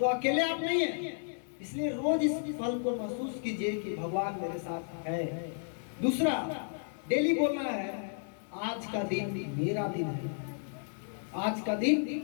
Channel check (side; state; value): right; silent; digital silence